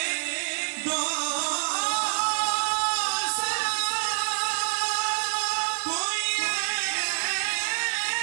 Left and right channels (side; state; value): left; silent; digital silence